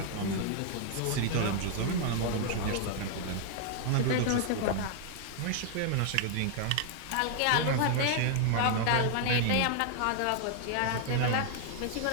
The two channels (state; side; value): different; both; correlation 0.00